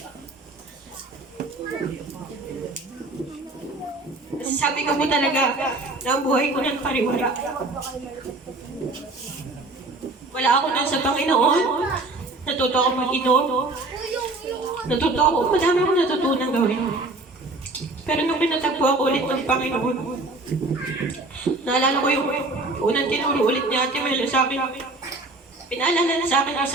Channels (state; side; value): quieter; left; 3.1 dB